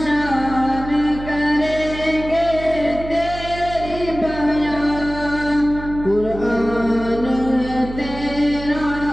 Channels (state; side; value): noise; right; hum, 11 dB below the sound